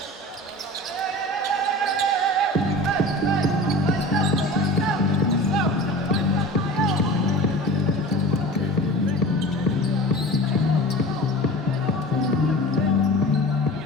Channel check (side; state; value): both; normal; correlation 0.37